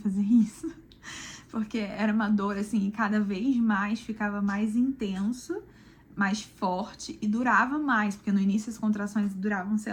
isso. Porque era uma dor, assim, e cada vez mais ficava mais intenso, mais forte e durava mais, porque no início as contrações duravam, sei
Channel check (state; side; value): identical; both; correlation 1.00